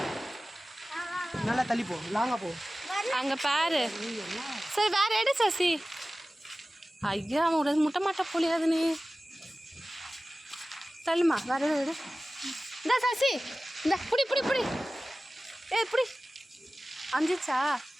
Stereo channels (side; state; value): both; normal; correlation 0.97